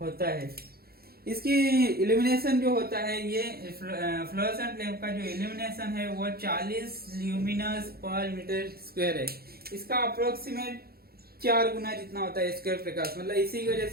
होता है। इसकी इल्यूमिनेशन जो होता है ये फ्लोरोसेंट लैंप का जो इल्यूमिनेशन है वो 40 ल्यूमिनस पर मीटर स्क्वायर है। इसका अप्रोक्सीमेट 4 गुना जितना होता है स्क्वायर प्रकाश, मतलब इसी की वजह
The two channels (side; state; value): left; late; 0.45 ms